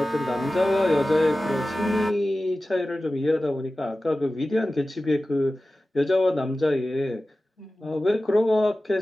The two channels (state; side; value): normal; both; correlation 0.95